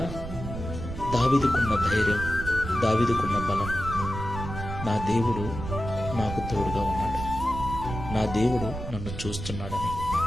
దావీదుకున్న ధైర్యం, దావీదుకున్న బలం, నా దేవుడు నాకు తోడుగా ఉన్నాడు, నా దేవుడు నన్ను చూస్తున్నాడని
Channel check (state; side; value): noise; right; rumble, 7 dB below the sound